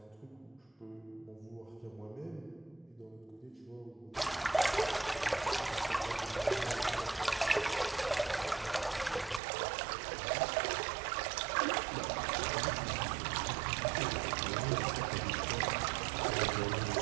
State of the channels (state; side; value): drops out; left; at 9.4 s